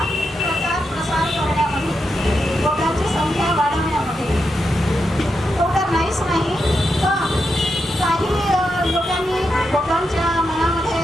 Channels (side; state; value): both; normal; correlation 0.85